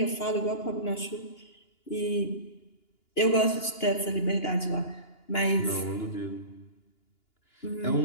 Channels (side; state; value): right; late; 2.9 ms